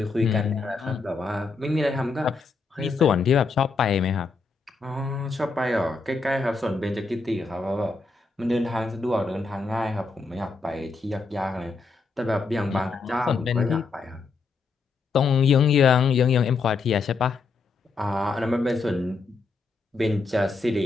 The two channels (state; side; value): quieter; right; 4.2 dB